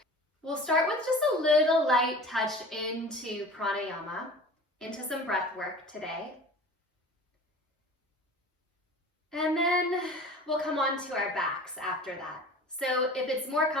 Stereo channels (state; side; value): normal; both; correlation 0.40